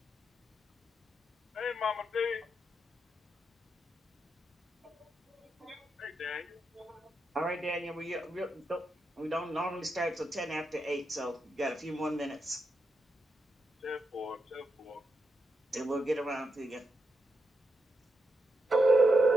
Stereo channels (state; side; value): normal; both; correlation 0.85